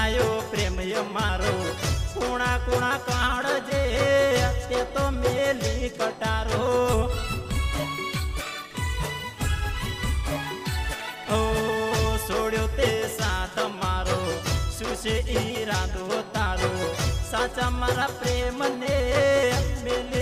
પ્રેમ મારો, કુણા કુણા કાળજે તે તો મેલી કટારો. ઓ છોડ્યો તે સાથ મારો, શું છે ઈરાદો તારો, સાચા મારા પ્રેમને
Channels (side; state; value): both; identical; correlation 1.00